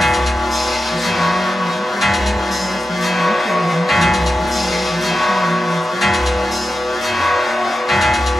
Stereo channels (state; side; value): normal; both; correlation 0.90